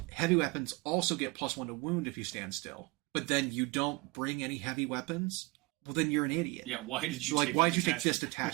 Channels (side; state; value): left; quieter; 24.8 dB